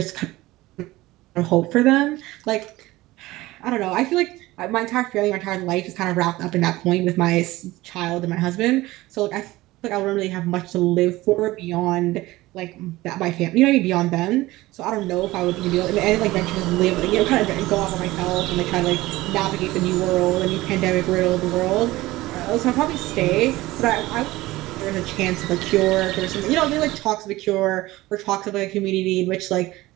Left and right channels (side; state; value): left; quieter; 18.5 dB